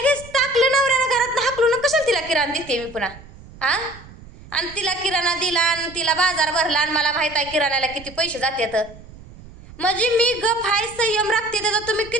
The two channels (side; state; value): right; noise; rumble, 19 dB below the sound